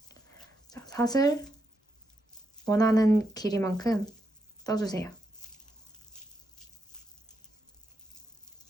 자, 사슬 원하는 길이만큼 떠주세요.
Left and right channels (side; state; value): both; normal; correlation 0.82